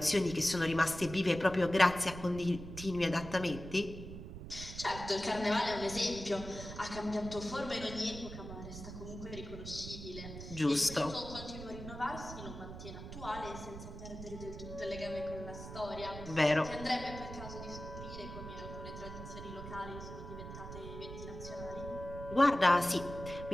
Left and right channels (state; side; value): noise; right; rumble, 10 dB below the sound